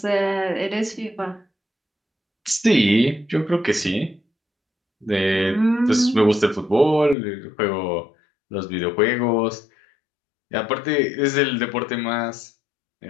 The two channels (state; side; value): drops out; right; at 7.2 s